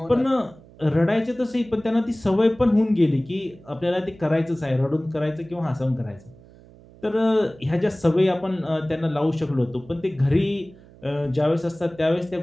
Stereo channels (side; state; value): right; noise; hum, 23 dB below the sound